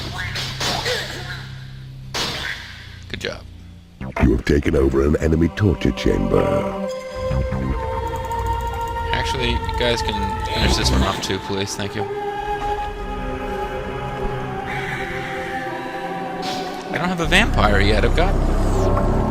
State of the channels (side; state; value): both; identical; correlation 1.00